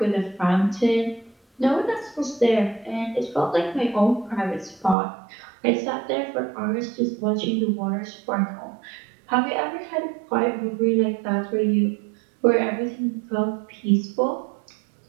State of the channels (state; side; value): drops out; left; at 5.0 s